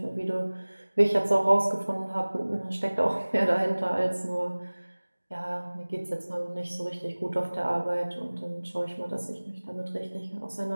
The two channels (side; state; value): both; inverted; correlation -1.00